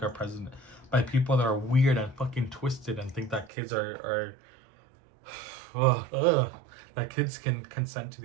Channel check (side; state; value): left; drops out; at 3.5 s